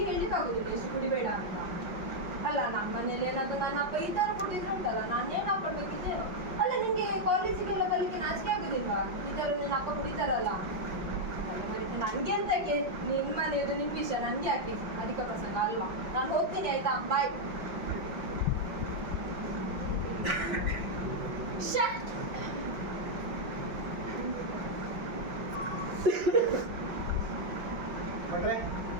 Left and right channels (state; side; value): late; left; 5.6 ms